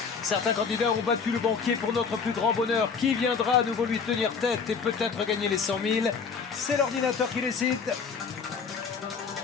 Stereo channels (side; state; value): right; quieter; 5.7 dB